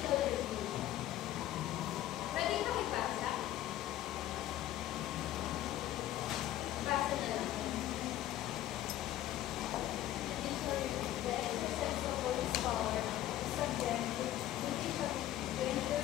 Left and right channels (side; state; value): right; quieter; 13.5 dB